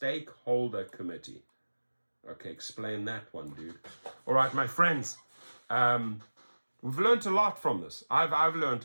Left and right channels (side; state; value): both; inverted; correlation -1.00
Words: committee. Okay, explain that one, dude. All right, my friends, we've learned a lot from this. I've learned